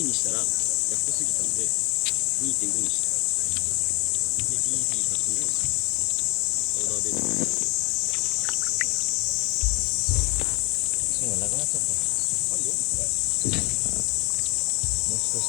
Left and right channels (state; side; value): quieter; right; 28.8 dB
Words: にしたら安すぎたんで 2.5 にした。で BB100 のパウダーベース芯がなくなっちゃった。あるよ。もう少し